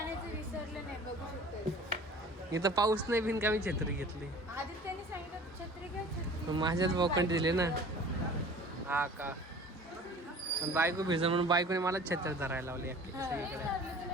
विसरले नाही, बघू शकतो. इथं पाऊस नाही बिन का मी छत्री घेतली. आधी त्यांनी सांगितलं छत्री घ्या, छत्री. माझ्याच बोकंड दिले ना. हा का, पण बायको भिजल म्हणून बायकोने मला छत्री धरायला लावली अख्खी सगळीकडे. लागली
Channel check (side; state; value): both; normal; correlation 0.45